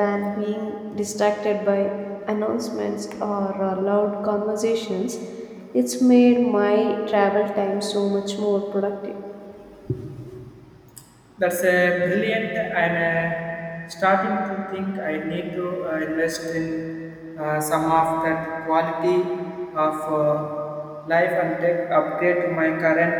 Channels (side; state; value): both; identical; correlation 1.00